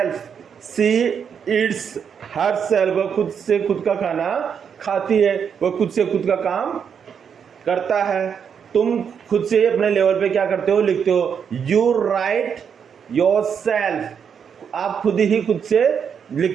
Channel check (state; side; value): quieter; left; 7.3 dB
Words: she eats herself। वह खुद से खुद का खाना खाती है, वह खुद से खुद का काम करता है। तुम खुद से अपने लेवल पे क्या करते हो, लिखते हो यू राइट योर सेल्फ, आप खुद ही खुद से